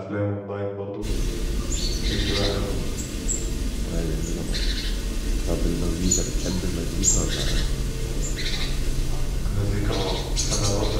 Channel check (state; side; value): identical; both; correlation 1.00